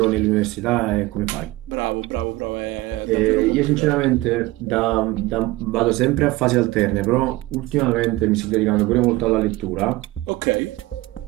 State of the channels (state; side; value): quieter; left; 19.2 dB